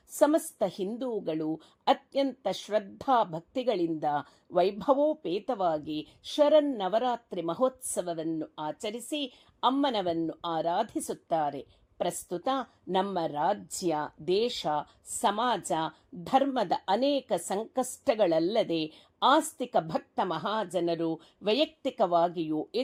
ಸಮಸ್ತ ಹಿಂದೂಗಳು ಅತ್ಯಂತ ಶ್ರದ್ಧಾ ಭಕ್ತಿಗಳಿಂದ ವೈಭವೋಪೇತವಾಗಿ ಶರನ್ನವರಾತ್ರಿ ಮಹೋತ್ಸವವನ್ನು ಆಚರಿಸಿ ಅಮ್ಮನವನ್ನು ಆರಾಧಿಸುತ್ತಾರೆ. ಪ್ರಸ್ತುತ ನಮ್ಮ ರಾಜ್ಯ, ದೇಶ, ಸಮಾಜ, ಧರ್ಮದ ಅನೇಕ ಸಂಕಷ್ಟಗಳಲ್ಲದೆ ಆಸ್ತಿಕ ಭಕ್ತ ಮಹಾಜನರು ವೈಯಕ್ತಿಕವಾಗಿಯೂ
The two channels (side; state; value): both; identical; correlation 1.00